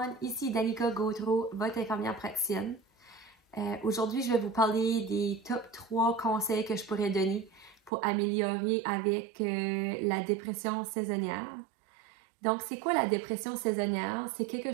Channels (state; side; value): drops out; left; at 7.9 s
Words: ici Danica Gautreau, votre infirmière praticienne. Aujourd'hui, je vais vous parler des top 3 conseils que je pourrais donner pour améliorer avec la dépression saisonnière. Donc, c'est quoi la dépression saisonnière? C'est quelque